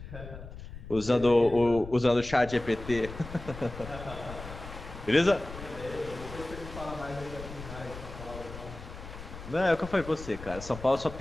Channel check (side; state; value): left; noise; rumble, 12 dB below the sound